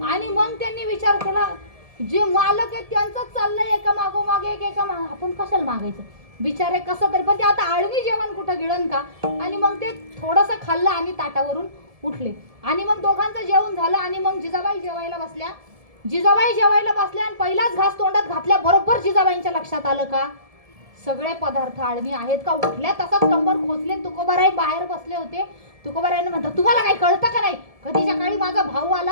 आणि मग त्यांनी विचार केला जे मालक आहेत त्यांचंच चाललंय एका मागोमागे एका आपण कशाला मागायचं बिचारे कसं तरी. पण ते आता आळणी जेवण कुठं गिळण का. आणि मग ते थोडंसं खाल्लं आणि ताटावरून उठले. आणि मग दोघांचं जेवण झालं आणि मग जिजाबाई जेवायला बसल्या. जिजाबाई जेवायला बसल्या आणि पहिलाच घास तोंडात घातल्या बरोबर जिजाबाईंच्या लक्षात आलं का सगळे पदार्थ आळणी आहेत का. उठल्या तसाच कंबर खोचले. तुकोबाराई बाहेर बसले होते. तुकोबारायांना म्हणतात तुम्हाला काही कळतं का नाही, कधीच्या काळी माझा भाऊ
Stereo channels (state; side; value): late; left; 1.7 ms